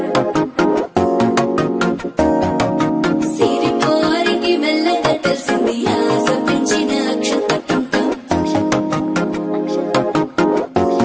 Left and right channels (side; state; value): both; identical; correlation 1.00